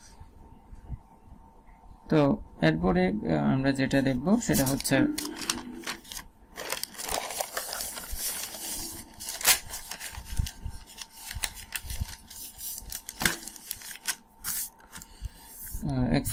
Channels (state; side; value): identical; both; correlation 1.00